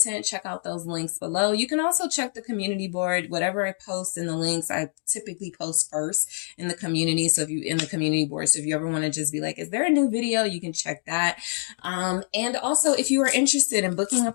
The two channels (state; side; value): silent; right; 61 dB below the other